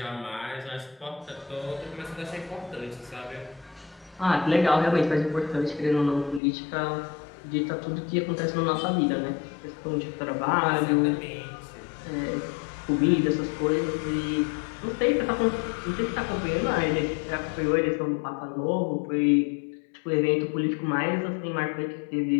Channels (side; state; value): right; drops out; at 6.4 s